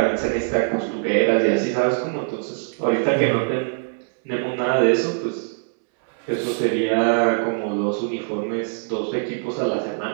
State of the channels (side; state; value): left; silent; digital silence